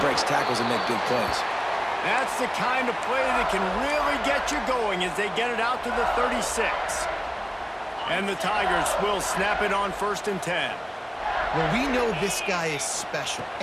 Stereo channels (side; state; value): both; identical; correlation 1.00